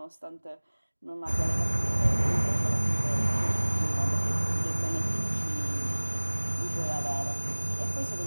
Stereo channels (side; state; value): both; inverted; correlation -1.00